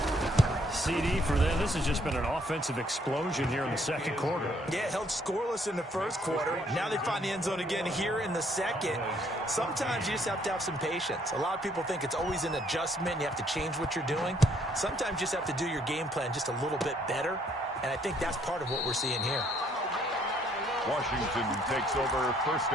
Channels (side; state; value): both; normal; correlation 0.66